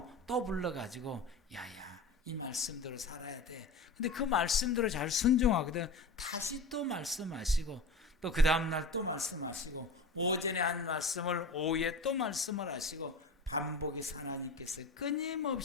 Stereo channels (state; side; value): quieter; right; 3.3 dB